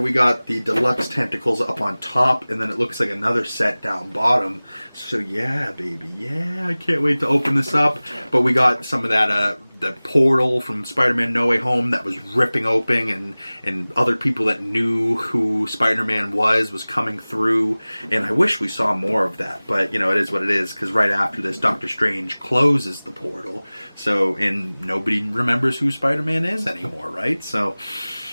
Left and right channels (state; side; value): inverted; both; correlation -0.99